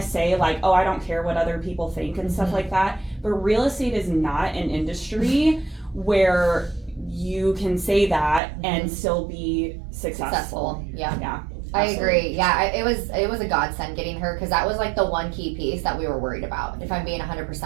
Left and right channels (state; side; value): drops out; left; at 8.4 s